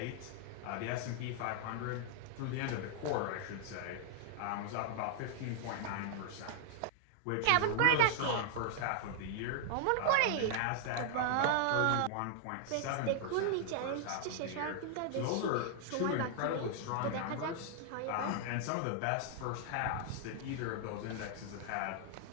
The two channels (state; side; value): different; both; correlation 0.00